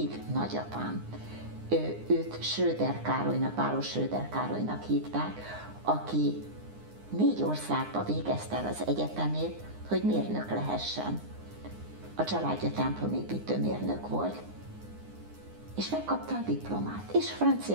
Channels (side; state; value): left; late; 9.7 ms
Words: nagyapám. Őt Schröder Károlynak, Báros Schröder Károlynak hívták, aki 4 országba végezte el az egyetemét, hogy mérnök lehessen. A családja templomépítő mérnök volt, és megkapta a diplomát, és